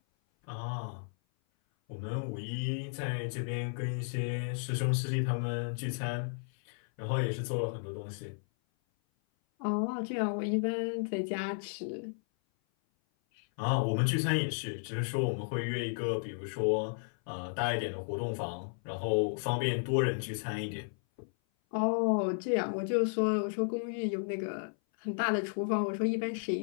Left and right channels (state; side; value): silent; right; 55 dB below the other